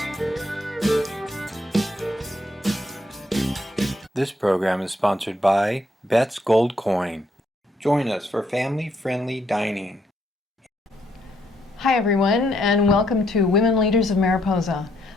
program is sponsored by Bet's Gold Coin. Join us for family-friendly dining. Hi everyone, and welcome to Women Leaders of Mariposa.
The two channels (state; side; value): normal; both; correlation 0.73